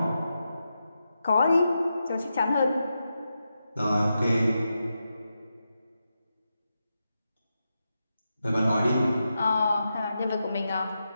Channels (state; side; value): inverted; both; correlation -0.88